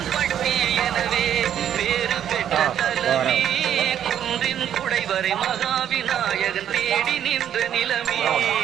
பட்டி எனவே பேரு பெற்ற தலமே குன்றின் குடைவரை மகாவிநாயகன் தேடி நின்ற நிலமே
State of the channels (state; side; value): quieter; left; 10.0 dB